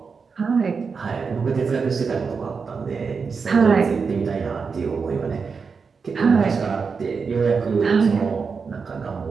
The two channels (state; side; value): quieter; left; 5.3 dB